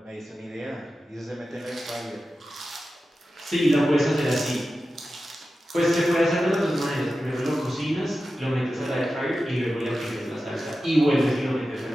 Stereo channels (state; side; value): normal; both; correlation 0.93